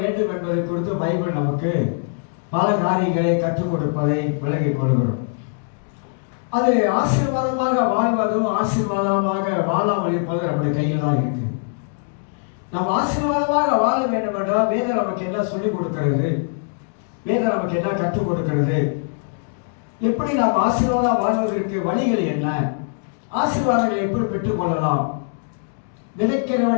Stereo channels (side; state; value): right; silent; digital silence